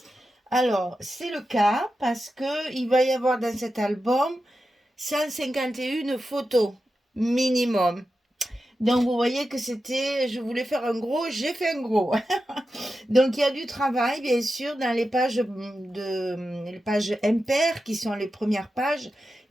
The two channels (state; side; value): normal; both; correlation 0.91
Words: Alors, c'est le cas parce que il va y avoir dans cet album 151 photos minimum. Donc, vous voyez que je voulais faire un gros, j'ai fait un gros. Donc, il y a du travail, bien sûr, dans les pages impaires qui sont les premières pages.